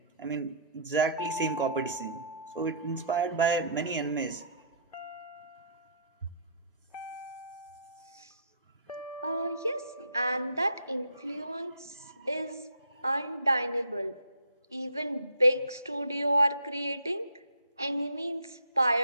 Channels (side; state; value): both; inverted; correlation -0.57